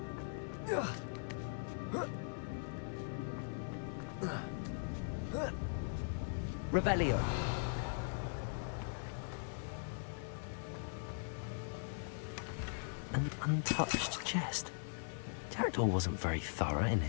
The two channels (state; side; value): silent; right; 51 dB below the other